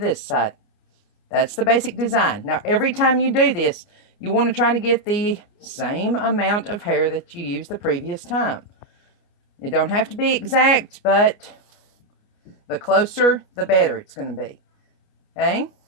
side. That's the basic design. Now, every time you do this, you want to try to get the same amount of hair that you used the previous time. It don't have to be exact, but the closer, the better it's going to be. Okay?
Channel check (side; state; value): right; late; 29 ms